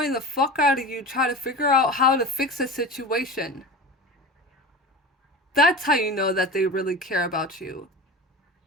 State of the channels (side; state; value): both; normal; correlation 0.31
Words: the fuck out of you trying to figure out how to fix a situation. That's how you know that they really care about you.